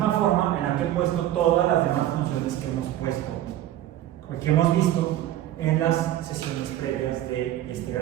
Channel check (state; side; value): quieter; left; 13.2 dB